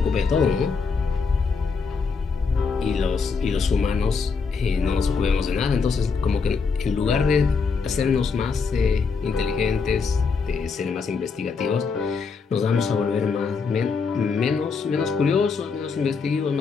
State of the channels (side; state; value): right; quieter; 5.1 dB